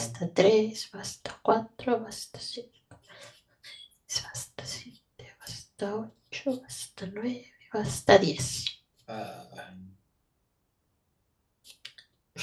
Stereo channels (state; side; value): identical; both; correlation 1.00